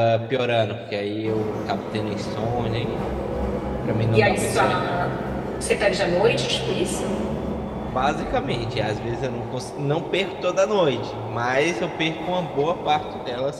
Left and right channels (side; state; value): both; identical; correlation 1.00